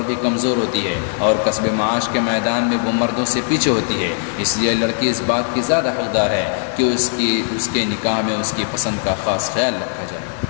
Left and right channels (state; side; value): silent; right; digital silence